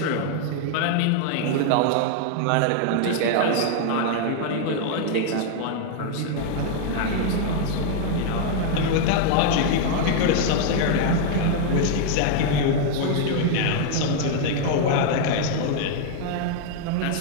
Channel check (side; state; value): both; different; correlation 0.00